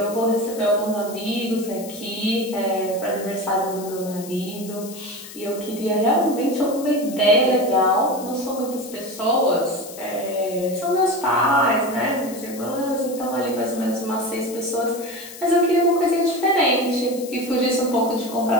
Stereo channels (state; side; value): noise; left; hiss, 15 dB below the sound